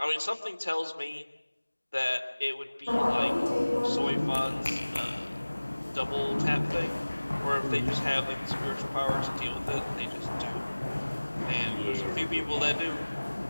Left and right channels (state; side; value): inverted; both; correlation -1.00